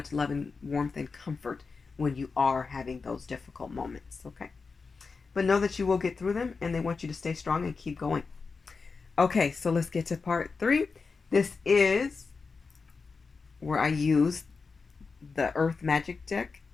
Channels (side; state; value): right; quieter; 4.6 dB